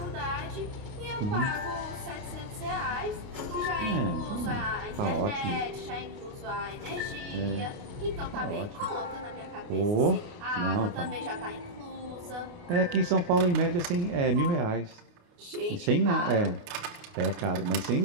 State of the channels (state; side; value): late; left; 29 ms